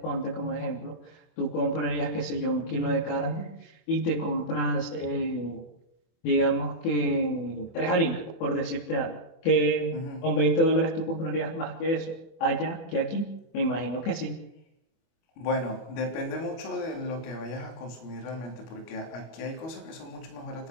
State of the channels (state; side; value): late; right; 24 ms